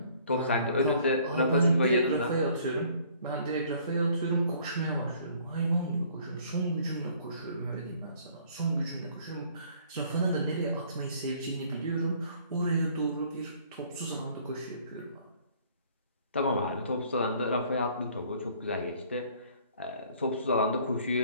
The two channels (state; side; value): inverted; both; correlation -0.58